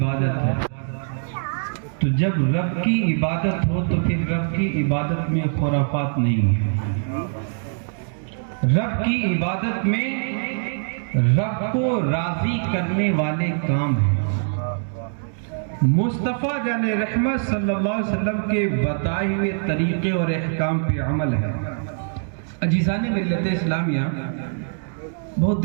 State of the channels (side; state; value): left; silent; digital silence